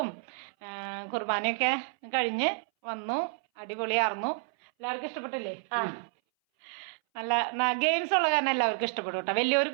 കുർബാനയൊക്കെ കഴിഞ്ഞ് വന്നു. അടിപൊളിയായിരുന്നു. എല്ലാവർക്കും ഇഷ്ടപ്പെട്ടില്ലേ? നല്ല ഗെയിംസ് ഉള്ള കാരണം എല്ലാവർക്കും ഇഷ്ടപ്പെടും കേട്ടോ,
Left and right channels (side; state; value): left; silent; 58 dB below the other